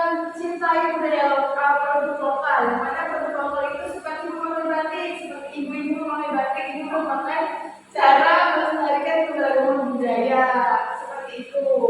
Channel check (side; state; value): both; identical; correlation 1.00